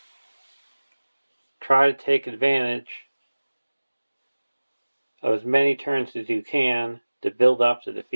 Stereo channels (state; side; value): inverted; both; correlation -1.00